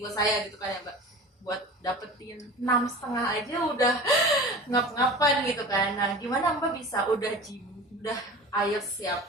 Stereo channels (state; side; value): normal; both; correlation 0.36